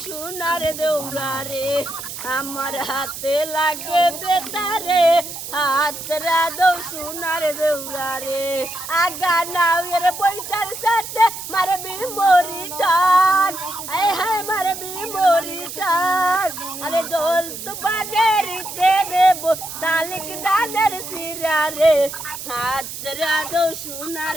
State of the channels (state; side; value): noise; right; hiss, 9 dB below the sound